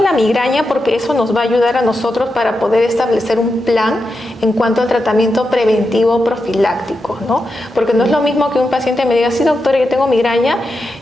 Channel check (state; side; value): normal; both; correlation 0.88